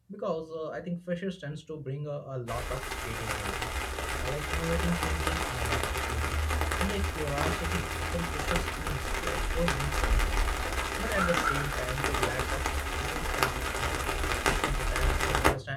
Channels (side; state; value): both; identical; correlation 1.00